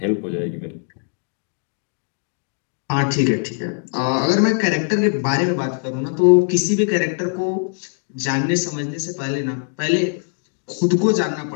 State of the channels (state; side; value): silent; right; 55 dB below the other